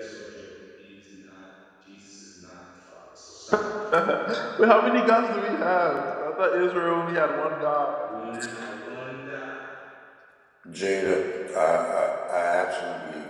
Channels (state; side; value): identical; both; correlation 1.00